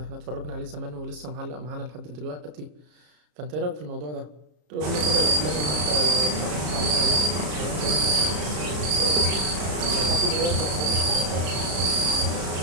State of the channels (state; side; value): late; left; 33 ms